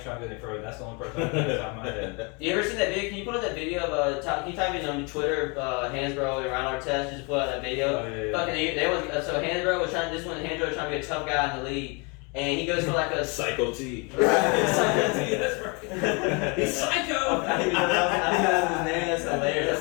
trying to go any further. That's the only person I can think of my head. You ever seen that video? Can you put up that video of can you type in on Twitter, Hansbrough and Ron Artest? Just put out that video. Oh, yeah. Fucking, so Hansbrough was trying. This one, Hansbrough was trying to be a tough guy in the league, and he goes for like a Psycho T. Psycho T. That's right. He's psycho. I think that's his name. That's hilarious.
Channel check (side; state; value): right; quieter; 31.6 dB